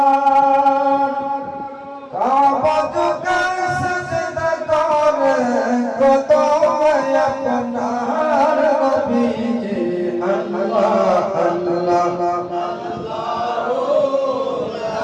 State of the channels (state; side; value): identical; both; correlation 1.00